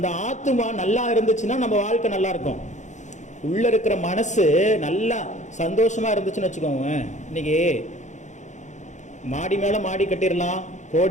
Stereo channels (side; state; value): right; late; 0.35 ms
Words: ஆத்மா நல்லா இருந்துச்சுன்னா நம்ம வாழ்க்கை நல்லா இருக்கும். உள்ள இருக்கிற மனசு நல்லா சந்தோஷமா இருந்துச்சுன்னு வச்சுக்கோங்க, இன்னைக்கு மாடி மேல மாடி கட்டிடலாம்,